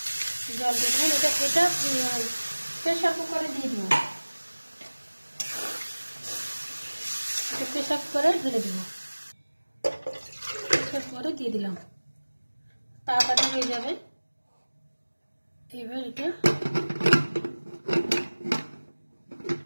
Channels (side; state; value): both; inverted; correlation -1.00